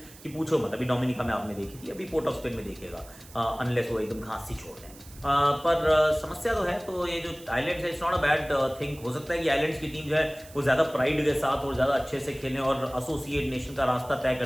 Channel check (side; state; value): right; noise; hiss, 20 dB below the sound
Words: कि पूछो मत। अभी डोमिनिका में आपने देखी थी, अभी पोर्ट ऑफ स्पेन में देखिएगा, अनलेस वो एकदम घास सी छोड़ दें। पर समस्या तो है। तो ये जो आइलैंड्स है, it's not a bad thing. हो सकता है कि आइलैंड्स की टीम जो है वो ज़्यादा प्राइड के साथ और ज़्यादा अच्छे से खेलें और एसोसिएट नेशन का रास्ता तय